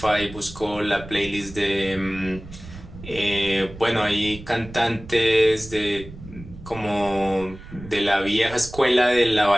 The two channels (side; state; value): right; noise; rumble, 15 dB below the sound